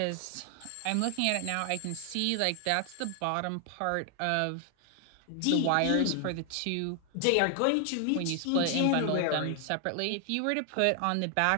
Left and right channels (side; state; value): both; different; correlation 0.00